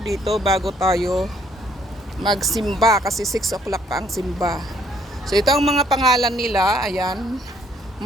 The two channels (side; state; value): both; normal; correlation 0.65